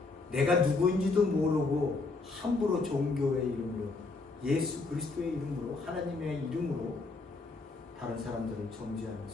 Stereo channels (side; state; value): right; quieter; 3.7 dB